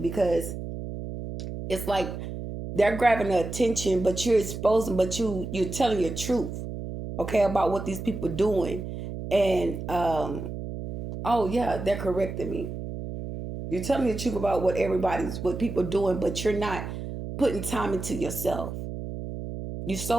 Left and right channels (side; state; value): right; noise; hum, 7 dB below the sound